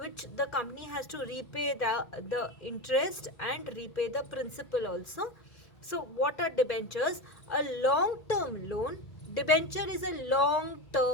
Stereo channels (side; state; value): right; late; 1.9 ms